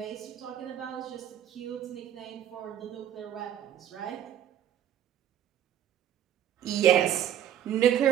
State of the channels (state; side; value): quieter; left; 10.4 dB